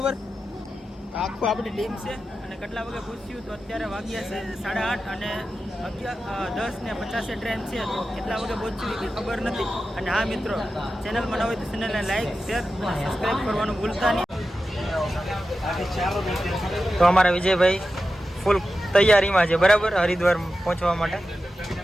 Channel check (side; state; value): both; normal; correlation 0.92